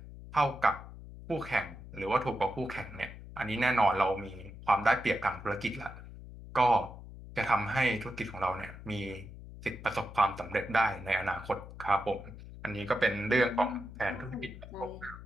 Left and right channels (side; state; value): left; noise; hum, 14 dB below the sound